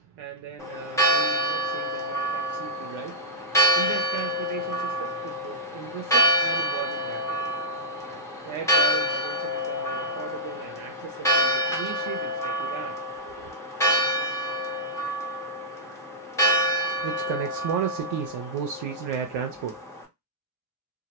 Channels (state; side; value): normal; both; correlation -0.13